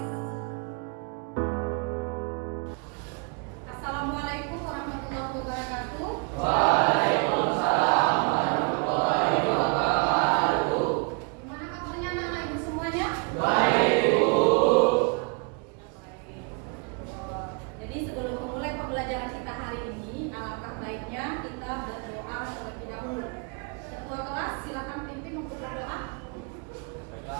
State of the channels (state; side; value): quieter; left; 34.6 dB